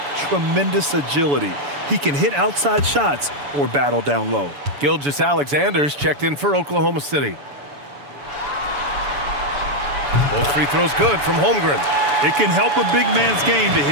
tremendous agility. He can hit outside shots or battle down low. Gilgeous-Alexander's checked in for Oklahoma City. Both free throws good from Holmgren. It can help a big man's game to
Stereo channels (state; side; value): late; left; 7.0 ms